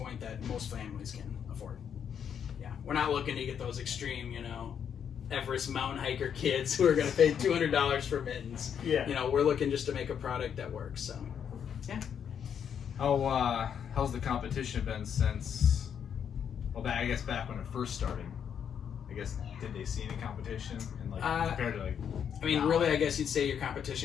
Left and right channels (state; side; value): quieter; right; 8.1 dB